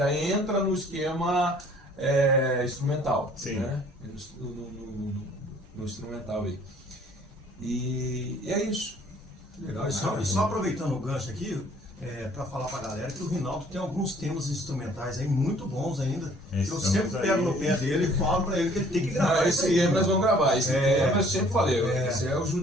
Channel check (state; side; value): normal; both; correlation 0.57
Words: entra no esquema instrumental. Sim. Né? No instrumental aí. E é isso. Legal. E só aproveitando o gancho aqui, para falar pra galera que o Rinaldo tem alguns temas instrumentais aí muito bons ainda. Eu sempre pego no pé dele e falo pra ele que ele tem que gravar. Esse tema nós vamos gravar. Esse tema eu sempre falei, esse é o